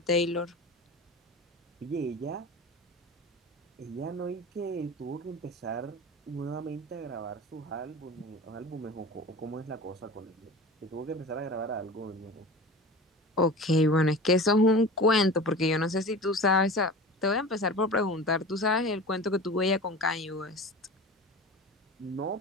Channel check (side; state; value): both; normal; correlation 0.34